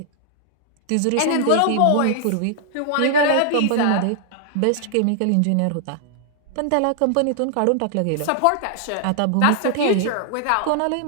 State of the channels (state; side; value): different; both; correlation -0.01